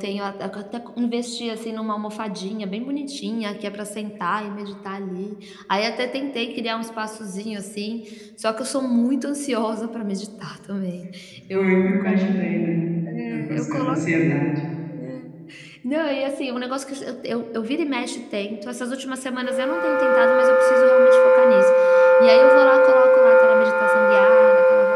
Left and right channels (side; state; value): both; identical; correlation 1.00